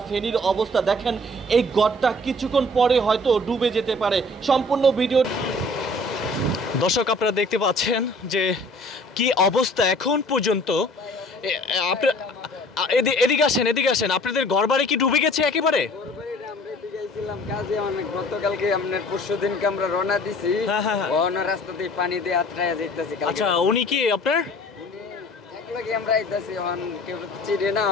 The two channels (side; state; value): both; normal; correlation 0.51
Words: ফেনীর অবস্থা দেখেন, এই গড়টা কিছুক্ষণ পরে হয়তো ডুবে যেতে পারে। সম্পূর্ণ ভিডিও দর্শক আপনারা দেখতে পাচ্ছেন যে কি অবস্থা এখন পর্যন্ত। এদিকে আসেন, আপনাদের ঘরবাড়ি কি ডুবে গেছে একেবারে? গতকালকে আপনার পরশুদিনকে আমরা রওনা দিছি, রাস্তা দিয়ে পানি দিয়ে আত্রায় যাইতেছি। আচ্ছা, উনি কি আপনার?